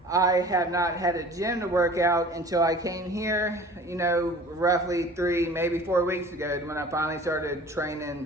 I have not had a gym to work out until I came here, roughly 3, maybe 4 weeks ago, when I finally started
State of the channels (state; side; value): normal; both; correlation 0.45